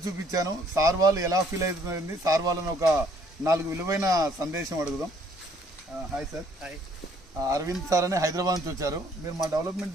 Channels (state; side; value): normal; both; correlation 0.62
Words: చూపించాను. సార్ వాళ్ళు ఎలా ఫీల్ అవుతుంది, సార్ వాళ్ళని ఒక 4 విలువైన సందేశం అడుగుదాం. Hi sir. Hi. Aravind sir అని హైదరాబాద్ నుంచి వచ్చారు. మీరు మా డెవలప్మెంట్